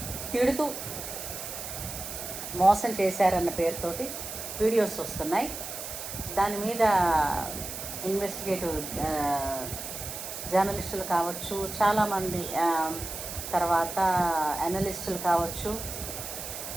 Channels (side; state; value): right; noise; hiss, 8 dB below the sound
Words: తిడుతూ మోసం చేశారన్న పేరుతోటి వీడియోస్ వస్తున్నాయి. దాని మీద ఇన్వెస్టిగేటివ్ జర్నలిస్టులు కావచ్చు, చాలామంది తర్వాత అనలిస్టులు కావచ్చు,